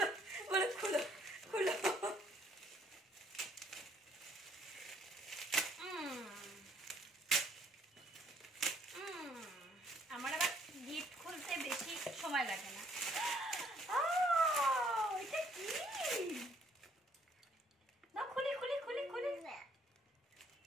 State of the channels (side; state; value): both; normal; correlation 0.64